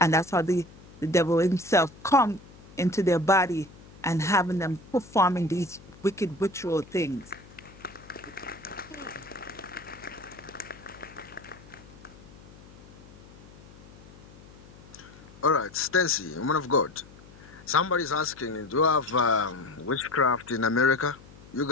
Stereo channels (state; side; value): noise; left; hum, 21 dB below the sound